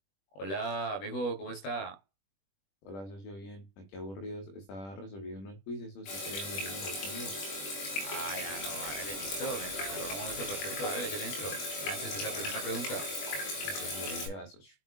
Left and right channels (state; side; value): late; right; 21 ms